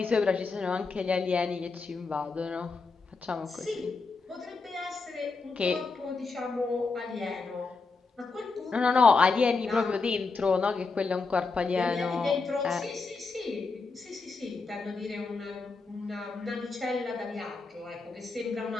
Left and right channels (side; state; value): right; quieter; 4.2 dB